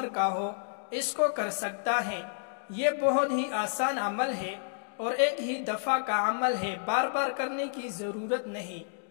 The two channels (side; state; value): right; silent; digital silence